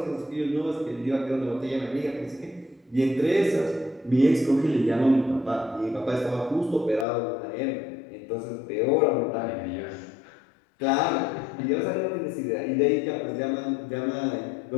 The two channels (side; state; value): right; drops out; at 7.1 s